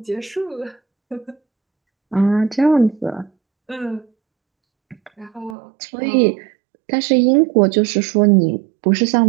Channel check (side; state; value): left; drops out; at 5.6 s